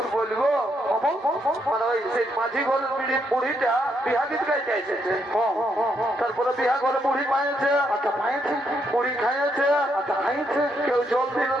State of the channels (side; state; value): both; normal; correlation 0.76